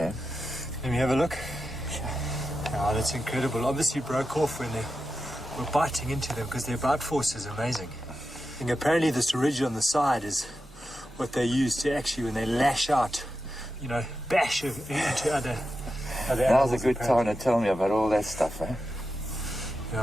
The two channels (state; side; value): normal; both; correlation 0.90